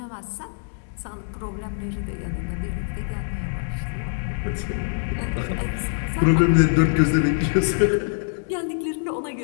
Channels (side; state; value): right; silent; digital silence